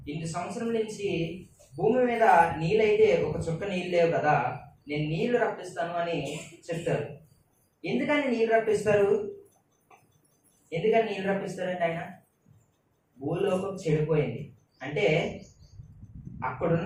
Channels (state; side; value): identical; both; correlation 1.00